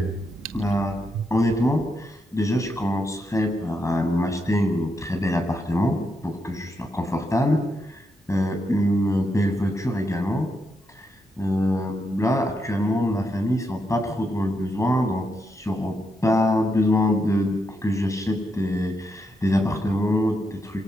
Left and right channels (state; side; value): normal; both; correlation 0.82